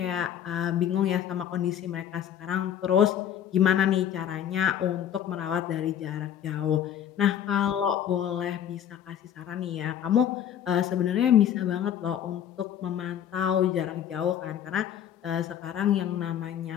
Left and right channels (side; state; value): right; quieter; 9.9 dB